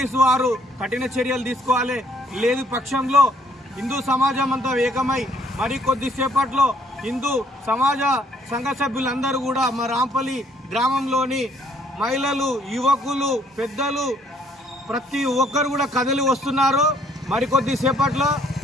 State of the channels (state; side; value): normal; both; correlation 0.64